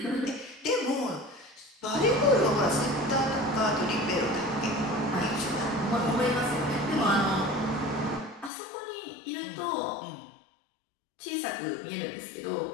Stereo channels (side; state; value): right; drops out; at 8.5 s